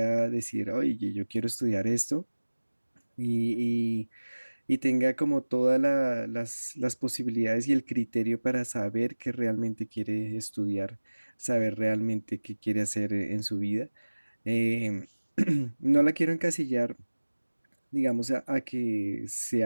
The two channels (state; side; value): inverted; both; correlation -1.00